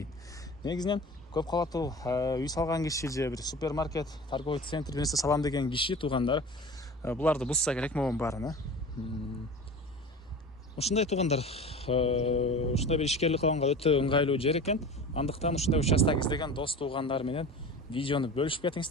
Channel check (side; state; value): both; normal; correlation 0.35